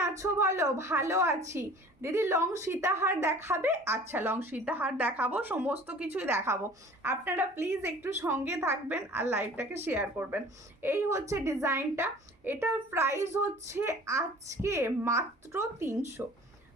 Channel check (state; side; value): normal; both; correlation 0.46